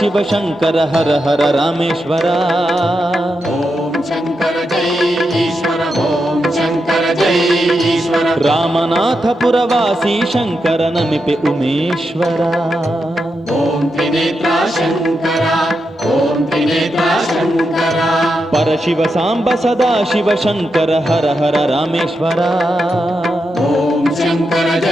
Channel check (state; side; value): normal; both; correlation 0.86